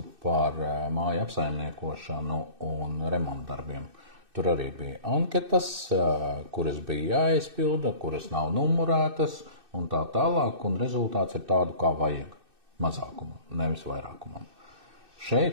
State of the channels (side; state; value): left; late; 2.6 ms